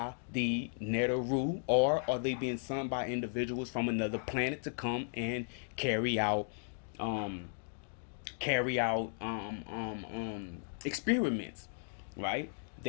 the Neteru, or are they being sent by individuals from another planet to come and carry out um, experiments, right?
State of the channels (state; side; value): silent; right; digital silence